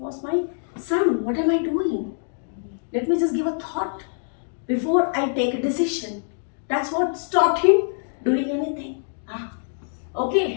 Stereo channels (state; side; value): silent; right; digital silence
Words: my son. What am I doing? Let me just give a thought before I take a decision. That's what stopped him doing anything.